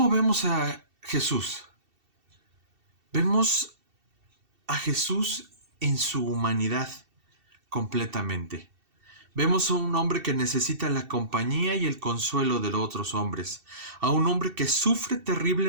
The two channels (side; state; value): left; late; 2.7 ms